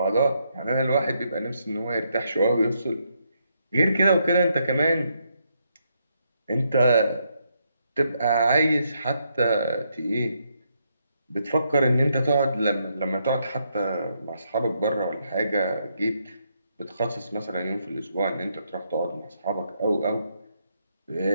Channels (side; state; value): both; inverted; correlation -0.77